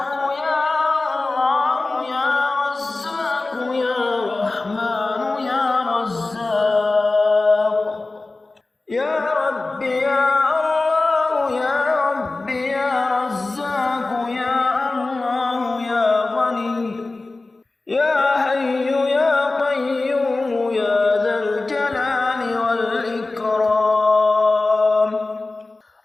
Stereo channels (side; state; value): right; quieter; 3.3 dB